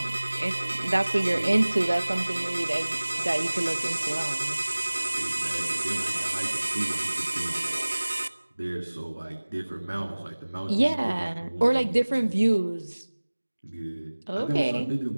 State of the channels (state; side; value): inverted; both; correlation -1.00